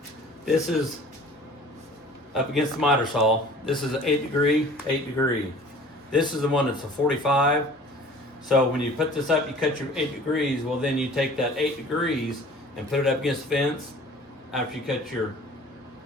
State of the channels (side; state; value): both; normal; correlation 0.47